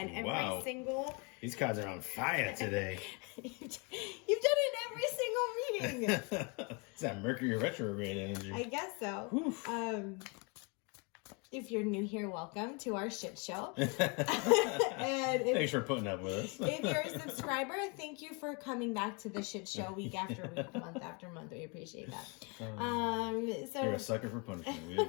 in every single... These cards are on fire today. You've done it in every single meeting. It's that Mercury retrograde energy. I guess so. If you're new here, welcome to our shit show. Thanks for putting up with us. If you're a subscriber, thank you for coming back to the shit show week after week, month after month. We appreciate that. So you're a sucker for punishment. We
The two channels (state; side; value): quieter; right; 32.1 dB